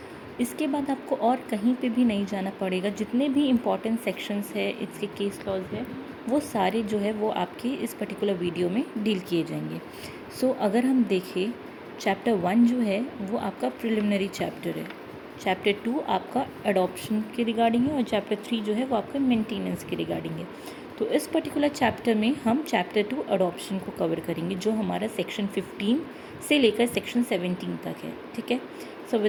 इसके बाद आपको और कहीं पे भी नहीं जाना पड़ेगा। जितने भी इम्पॉर्टेंट सेक्शंस है, इसके केस लॉज है, वो सारे जो है वो आपके इस पर्टिकुलर वीडियो में डील किए जाएंगे। सो अगर हम देखें, चैप्टर 1 जो है वो आपका प्रिलिमिनरी चैप्टर है, चैप्टर 2 आपका अडॉप्शन के रिगार्डिंग है और चैप्टर 3 जो है वो आपका मेंटेनेंस के रिगार्डिंग है। तो इस पर्टिकुलर चैप्टर में हम चैप्टर 2 अडॉप्शन को कवर करेंगे जो हमारा सेक्शन 15 से लेकर सेक्शन 17 तक है। ठीक है, सो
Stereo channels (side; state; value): both; identical; correlation 1.00